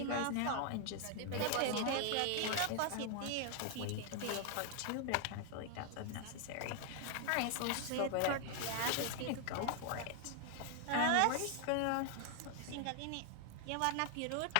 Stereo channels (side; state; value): both; different; correlation 0.00